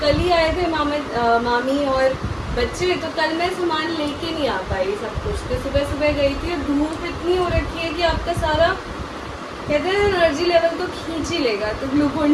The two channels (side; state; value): both; identical; correlation 1.00